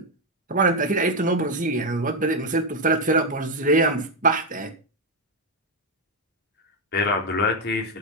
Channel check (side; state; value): both; normal; correlation 0.04